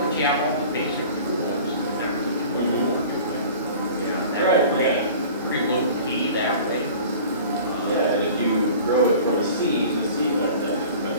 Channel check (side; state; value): both; inverted; correlation -0.43